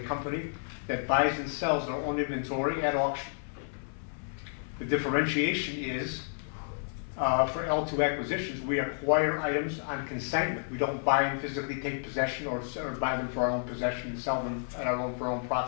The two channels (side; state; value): right; silent; 56 dB below the other